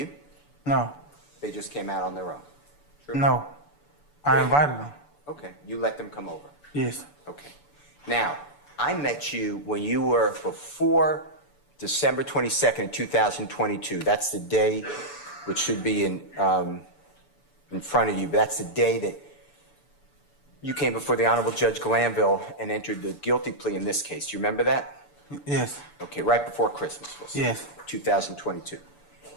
No. They just came out on their own? True? No. I invited them. Okay. You let them come over? Yes. Okay. Now, I met you when you were before December 22nd, 2022. That's the day, which should be in front of you, but that's the day that you came before the Honorable Judge Glanville and entered the guilty plea in this case. Do you remember that? Yes. Okay, right before Christmas, we'll say. Yes. 2022.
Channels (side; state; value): right; late; 6.9 ms